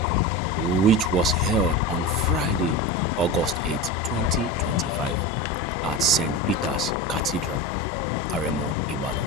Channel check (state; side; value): normal; both; correlation 0.25